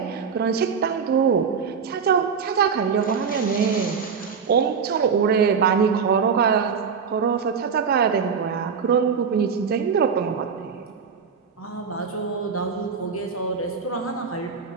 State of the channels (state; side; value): quieter; left; 6.2 dB